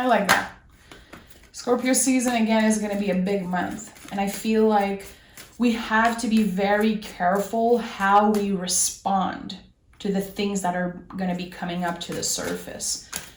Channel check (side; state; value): both; identical; correlation 1.00